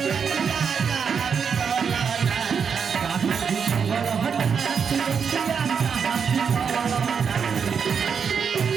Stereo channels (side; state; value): left; quieter; 6.5 dB